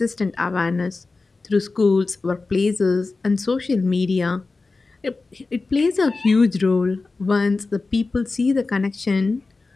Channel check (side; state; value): right; quieter; 3.7 dB